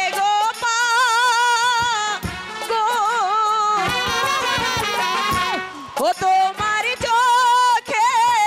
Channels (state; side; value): identical; both; correlation 1.00